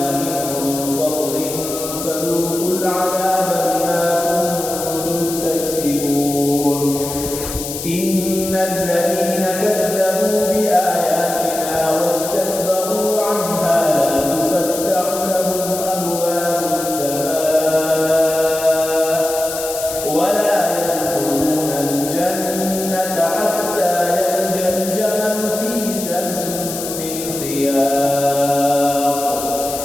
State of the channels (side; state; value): left; noise; hiss, 7 dB below the sound